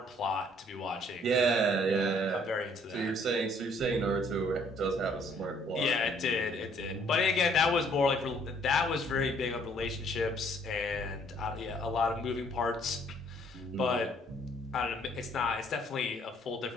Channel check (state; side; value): normal; both; correlation 0.62